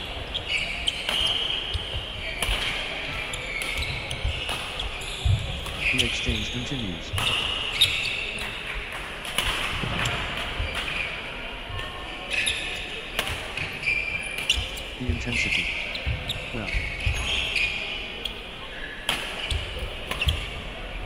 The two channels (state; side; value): identical; both; correlation 1.00